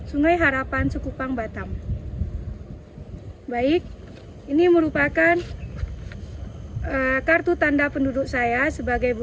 Sungai Harapan Sekupang Batam. Baik, ini merupakan kartu tanda penduduk saya sebagai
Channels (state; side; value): identical; both; correlation 1.00